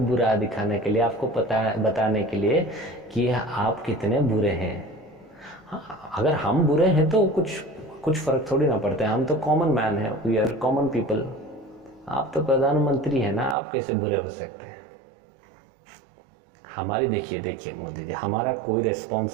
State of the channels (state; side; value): drops out; left; at 13.6 s